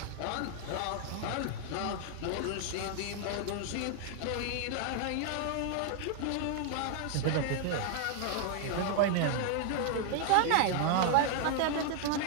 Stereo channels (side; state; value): both; different; correlation 0.00